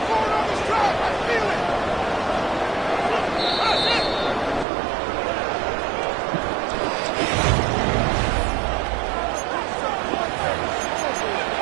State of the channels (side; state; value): left; drops out; at 4.7 s